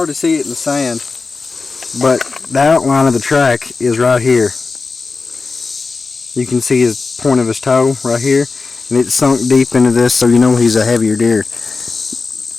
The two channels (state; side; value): quieter; right; 4.2 dB